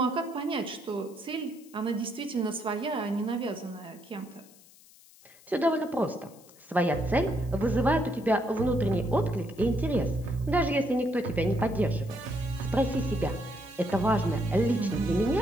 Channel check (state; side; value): noise; left; hiss, 25 dB below the sound